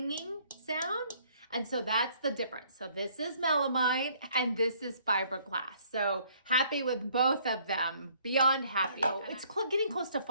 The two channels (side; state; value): both; inverted; correlation -0.63